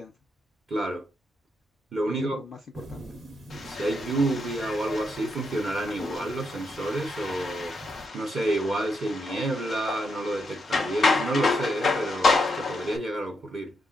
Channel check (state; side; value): normal; both; correlation 0.81